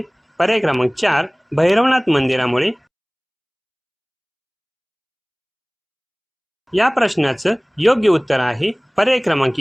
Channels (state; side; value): identical; both; correlation 1.00